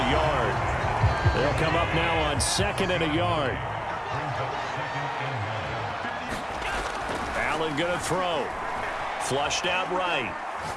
yard. They'll come up now on 2nd and a yard. Allen going to throw. Flushed out right.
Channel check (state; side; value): identical; both; correlation 1.00